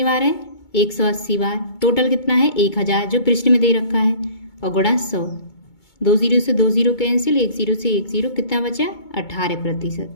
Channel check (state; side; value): late; right; 2.2 ms